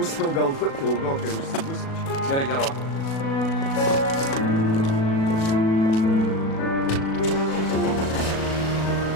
galbūt ilgokai užsibūsim. Gerai, gerokai.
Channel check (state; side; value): late; right; 37 ms